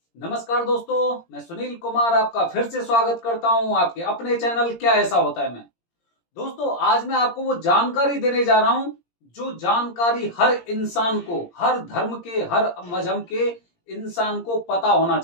नमस्कार दोस्तों, मैं सुनील कुमार आपका फिर से स्वागत करता हूं आपके अपने चैनल क्या ऐसा होता है में। दोस्तों, आज मैं आपको वो जानकारी देने जा रहा हूं जो जानकारी हर इंसान को, हर धर्म के, हर मजहब के इंसान को पता होना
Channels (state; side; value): late; right; 17 ms